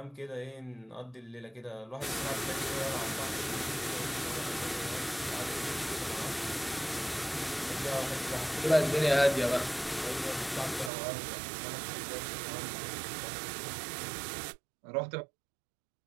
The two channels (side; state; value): left; drops out; at 10.9 s